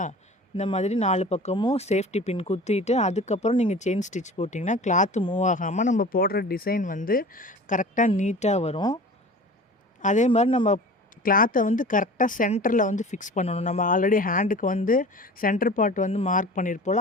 இந்த மாதிரி 4 பக்கமும் சேஃப்டி பின் குத்திட்டு அதுக்கப்புறம் நீங்கள் செயின் ஸ்டிச் போட்டிங்கன்னா கிளாத்து மூவ் ஆகாமல் நம்ம போடுற டிசைன் வந்து கரெக்டாக நீட்டாக வரும். அதே மாதிரி நம்ம கிளாத்தை வந்து கரெக்டாக சென்டரில் வந்து ஃபிக்ஸ் பண்ணணும். நம்ம ஆல்ரெடி ஹேண்டுக்கு வந்து சென்டர் பார்ட் வந்து மார்க்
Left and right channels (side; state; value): both; normal; correlation 0.40